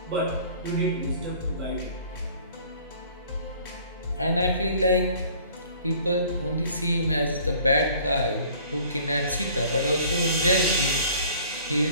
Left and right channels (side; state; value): both; inverted; correlation -0.52